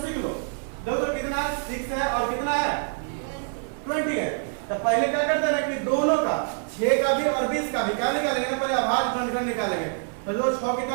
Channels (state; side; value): silent; left; 56 dB below the other